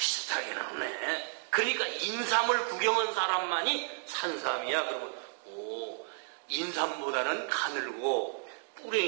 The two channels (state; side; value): silent; left; digital silence